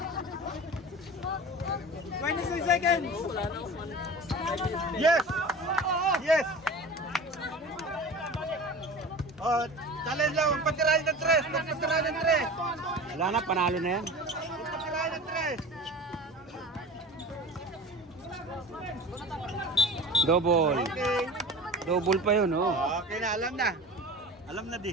26 seconds! Yes! Oh, challenge lang, magpatirahin ng tres! Wala na, panalo na yan. Magpatirahin ng tres! Double. Okay. Double pa yun, oh. Okay na, alam na. Alam na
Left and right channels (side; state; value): both; normal; correlation 0.36